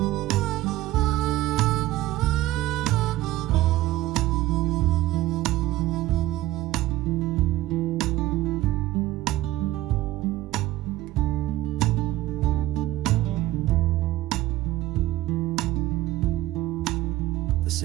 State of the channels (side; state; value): left; quieter; 15.9 dB